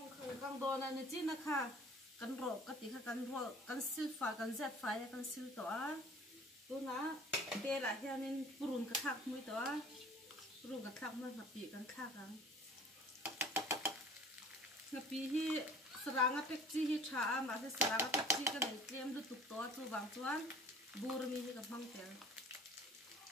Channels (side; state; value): both; normal; correlation 0.48